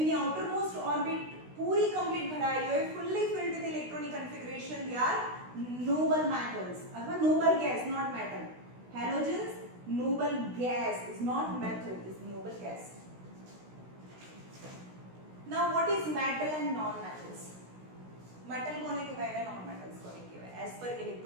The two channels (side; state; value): left; late; 16 ms